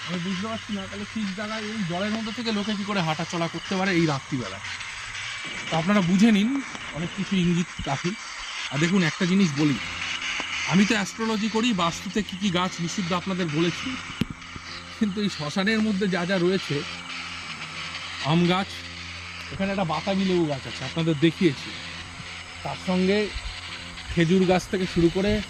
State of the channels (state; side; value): identical; both; correlation 1.00